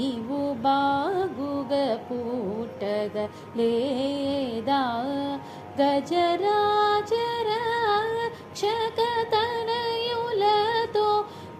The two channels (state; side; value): identical; both; correlation 1.00